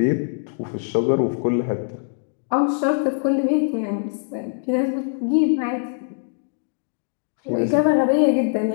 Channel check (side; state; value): right; silent; digital silence